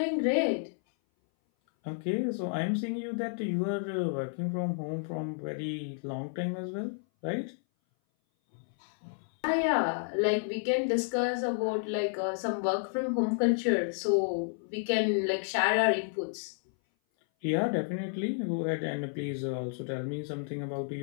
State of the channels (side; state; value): right; silent; 57 dB below the other